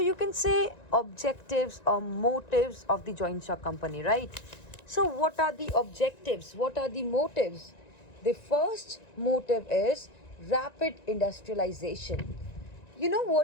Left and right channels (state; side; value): late; right; 1.9 ms